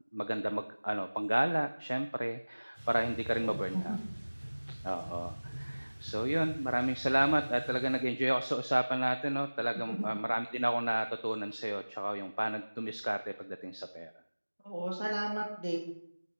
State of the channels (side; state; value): both; inverted; correlation -1.00